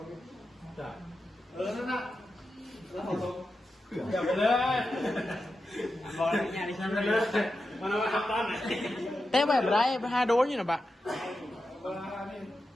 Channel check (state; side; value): normal; both; correlation 0.90